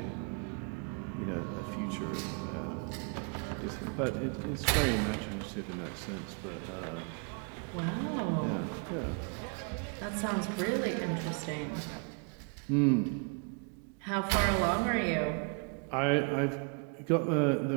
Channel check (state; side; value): quieter; left; 37.9 dB